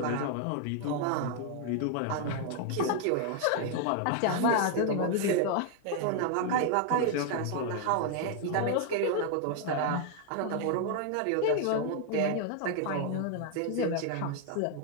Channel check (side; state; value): both; different; correlation 0.00